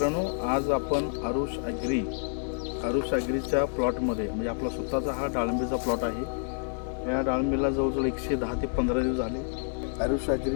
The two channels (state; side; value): silent; right; digital silence